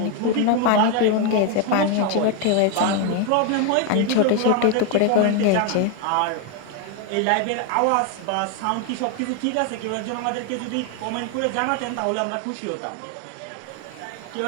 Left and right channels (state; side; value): different; both; correlation 0.01